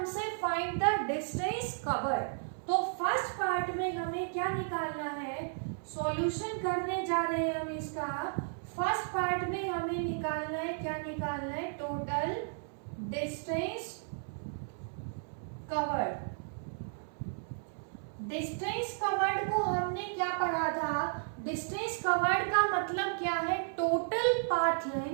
फाइंड द डिस्टेंस कवर्ड। तो फर्स्ट पार्ट में हमें क्या निकालना है? सॉल्यूशन करने जा रहे हैं हम इसका। फर्स्ट पार्ट में हमें निकालना है, क्या निकालना है? Total distance covered. Distance covered को हमने क्या पढ़ा था? डिस्टेंस कवर्ड का मतलब क्या है? Total path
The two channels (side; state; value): left; silent; 55 dB below the other